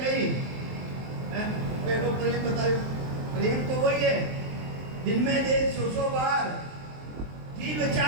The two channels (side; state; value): left; late; 23 ms